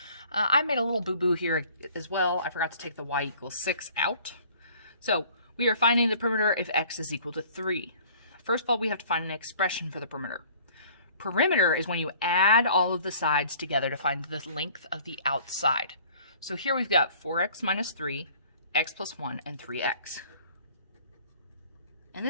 I made a little boo-boo here as well. I forgot to take the y equals 6 out. So, we are finding the perimeter if x is equal to 3. First of all, we have to find an expression for the perimeter. Perimeter is when you add all of the sides together to find the length of the outside. So here we've got 4x minus 3, x plus 1, and 3x. And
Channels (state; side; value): inverted; both; correlation -0.53